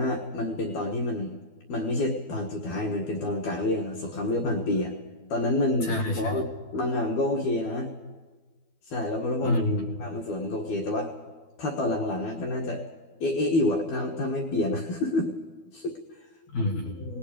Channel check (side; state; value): right; late; 12 ms